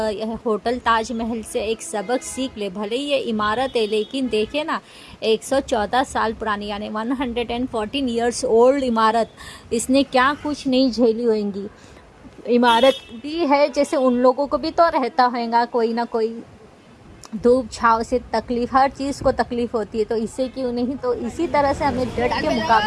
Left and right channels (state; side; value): identical; both; correlation 1.00